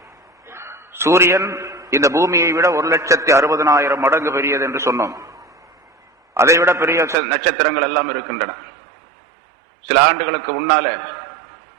சூரியன் இந்த பூமியை விட 1,60,000 மடங்கு பெரியது என்று சொன்னோம். அதைவிட பெரிய நட்சத்திரங்கள் எல்லாம் இருக்கின்றன. சில ஆண்டுகளுக்கு முன்னால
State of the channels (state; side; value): drops out; left; at 7.2 s